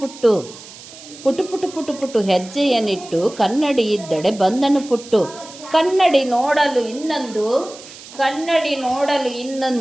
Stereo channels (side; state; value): right; noise; hiss, 17 dB below the sound